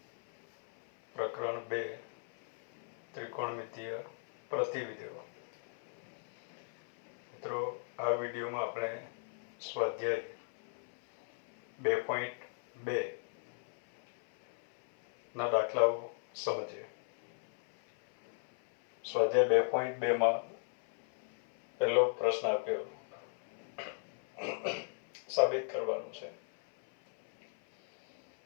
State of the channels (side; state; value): right; silent; 53 dB below the other